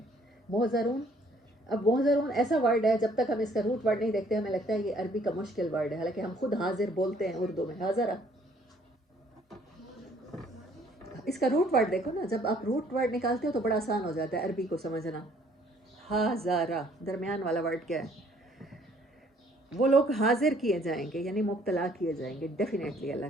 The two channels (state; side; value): normal; both; correlation 0.61